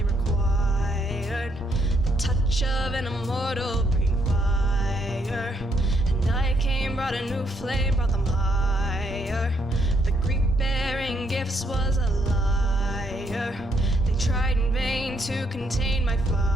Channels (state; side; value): normal; both; correlation 0.73